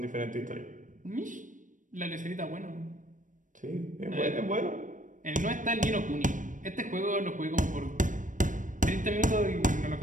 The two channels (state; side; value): late; left; 0.37 ms